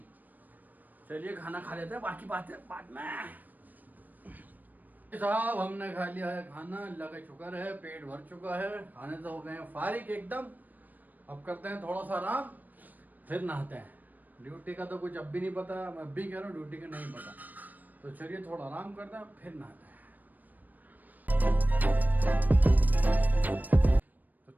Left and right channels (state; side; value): late; left; 0.085 ms